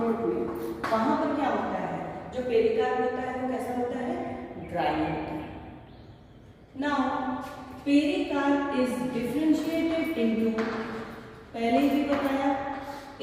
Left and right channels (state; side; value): identical; both; correlation 1.00